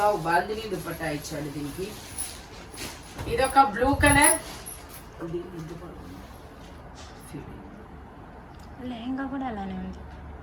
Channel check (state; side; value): identical; both; correlation 1.00